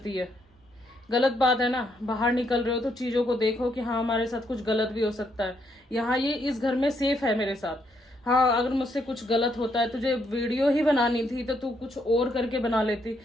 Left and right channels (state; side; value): normal; both; correlation 0.75